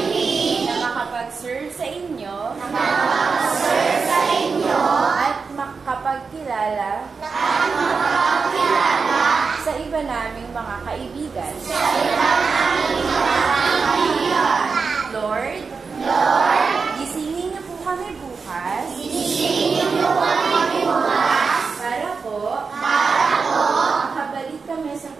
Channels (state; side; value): quieter; left; 5.0 dB